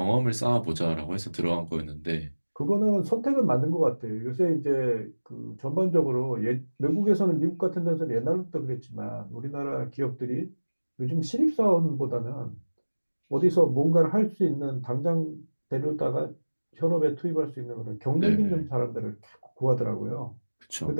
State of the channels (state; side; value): inverted; both; correlation -1.00